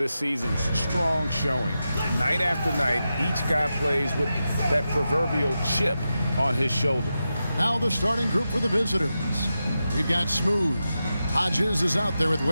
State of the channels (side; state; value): both; inverted; correlation -0.90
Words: season's strong showing. Night after night, each guy plays with that proverbial chip on his shoulder. Now the starting group for the visitors. We've got Smooth. Hodges is out there with